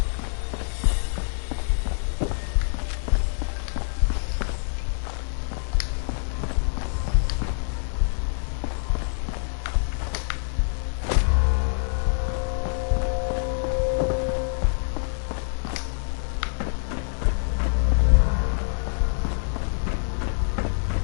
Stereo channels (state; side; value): silent; right; digital silence